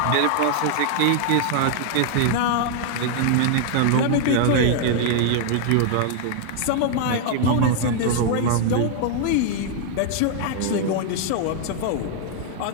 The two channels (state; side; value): different; both; correlation 0.00